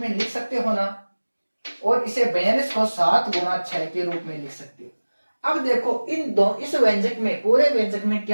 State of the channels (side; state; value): both; inverted; correlation -1.00